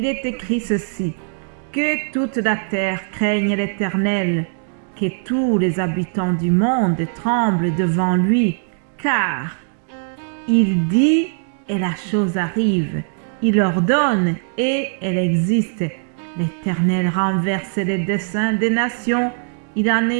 est écrit ceci. Que toute la terre craigne l'Éternel, que tous les habitants du monde tremblent devant lui, car il dit et la chose arrive, il ordonne et elle existe. L'Éternel renverse les desseins des nations, il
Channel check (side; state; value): left; silent; 66 dB below the other